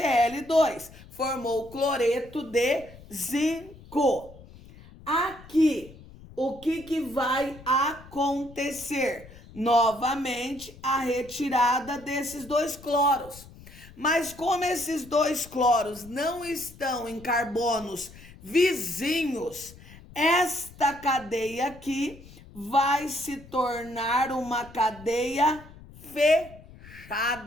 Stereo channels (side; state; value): left; noise; rumble, 20 dB below the sound